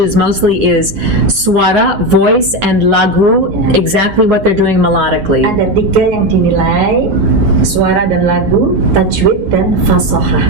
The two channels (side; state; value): left; late; 9.4 ms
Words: mostly is suara, voice, and lagu, exactly what they're doing melodically. Ada 3 yang dinilai, suara dan lagu, tajwid dan fasoha.